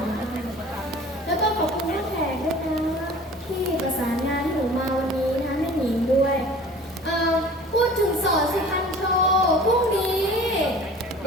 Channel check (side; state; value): both; normal; correlation 0.44